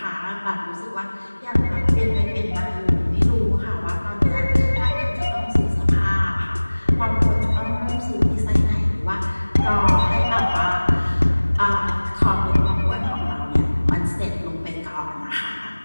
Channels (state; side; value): inverted; both; correlation -1.00